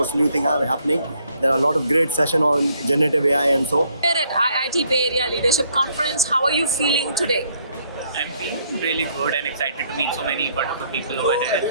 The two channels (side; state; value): both; inverted; correlation -0.68